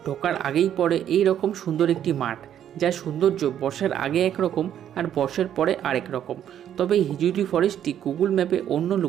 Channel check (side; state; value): left; quieter; 10.2 dB